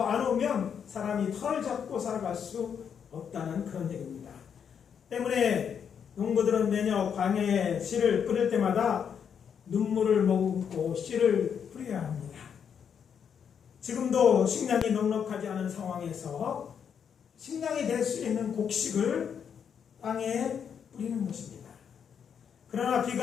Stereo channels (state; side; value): quieter; right; 7.5 dB